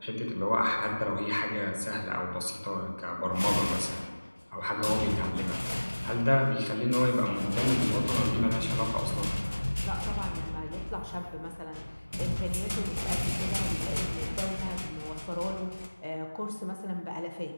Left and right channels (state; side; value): inverted; both; correlation -1.00